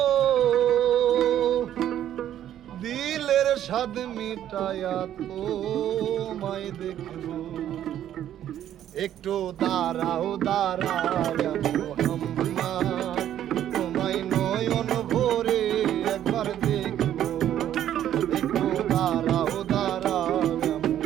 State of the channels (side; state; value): left; quieter; 11.2 dB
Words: দিলের স্বাদ মিটায়া তোমায় দেখব। একটু দাঁড়াও দাঁড়াও মোহাম্মদ, তোমায় নয়ন ভরে একবার দেখব। একটু দাঁড়াও দাঁড়াও